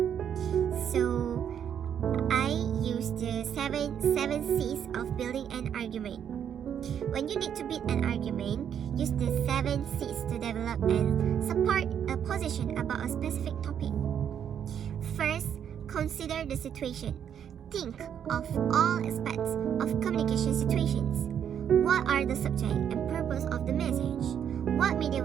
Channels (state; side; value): quieter; left; 8.8 dB